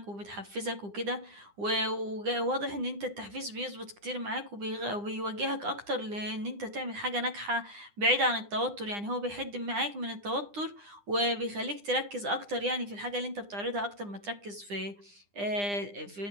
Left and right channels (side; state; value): left; late; 9.9 ms